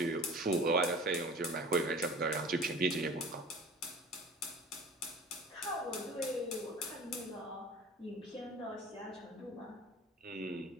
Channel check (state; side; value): normal; both; correlation 0.42